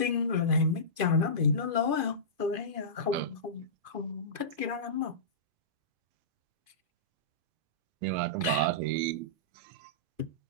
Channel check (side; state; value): left; late; 2.5 ms